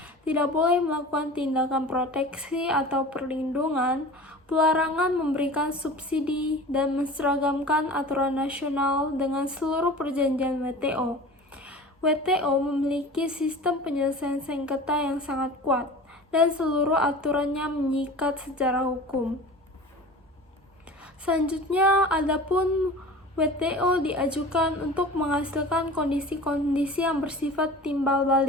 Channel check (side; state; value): both; normal; correlation 0.38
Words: Tidak boleh melakukan tindakan proteksi atau perlindungan, pelarangan memberikan subsidi, dan menseragamkan aturan nasional dengan seluruh perjanjian WTO. WTO memiliki sistem penyelesaian sengketa yang sangat kuat, dan seluruh aturannya mengikat secara hukum. Selanjutnya, adapun WTO diajukan untuk menghasilkan kondisi-kondisi yang bersifat timbal